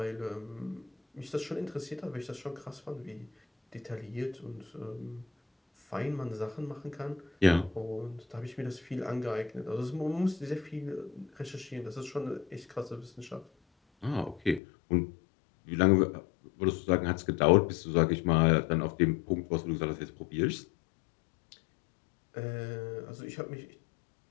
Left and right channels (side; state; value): right; drops out; at 14.6 s